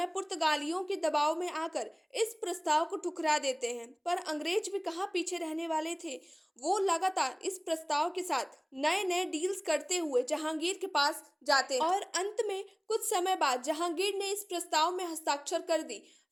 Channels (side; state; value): both; identical; correlation 1.00